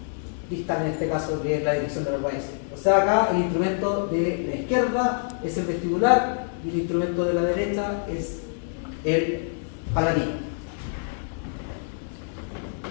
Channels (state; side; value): silent; right; digital silence